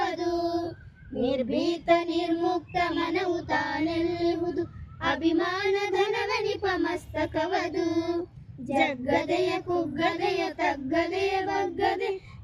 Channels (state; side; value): identical; both; correlation 1.00